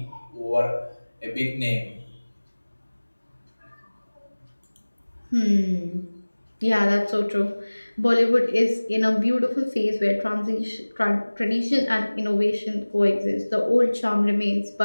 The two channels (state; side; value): inverted; both; correlation -1.00